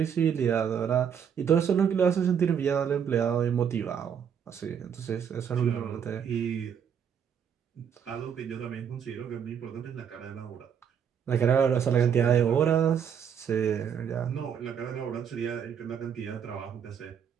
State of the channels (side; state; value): left; quieter; 7.9 dB